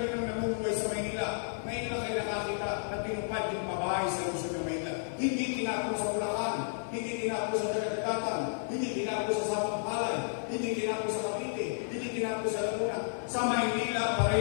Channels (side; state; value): right; silent; 56 dB below the other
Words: nyo nang namumuhay sa Maynila. Ngayon lang kayo nakakita na tinupad yung pabahay sa Luzon ng Maynila. Hindi tinapos sa Bulacan, hindi tinapos sa Dagat-Dagatan, hindi tinapos sa Sampalay, hindi tinapos sa Cavite, hindi tinapos sa Laguna. Sa Maynila pa